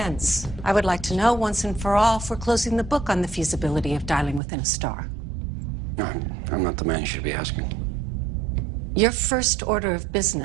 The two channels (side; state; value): left; drops out; at 4.4 s